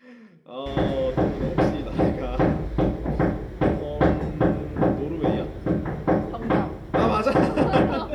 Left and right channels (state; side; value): identical; both; correlation 1.00